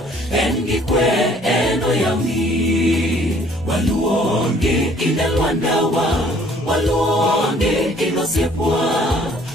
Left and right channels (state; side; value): normal; both; correlation 0.58